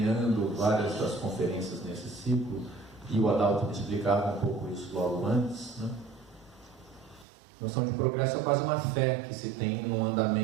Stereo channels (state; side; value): drops out; left; at 7.2 s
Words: várias das conferências nesse ciclo, e o Adalto me explicava um pouco isso logo antes, né? A noção de progresso é quase uma fé que se tem num